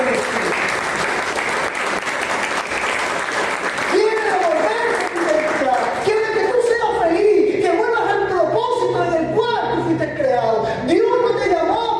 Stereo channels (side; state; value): both; identical; correlation 1.00